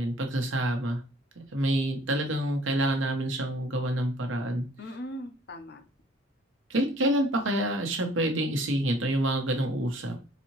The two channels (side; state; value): both; normal; correlation 0.57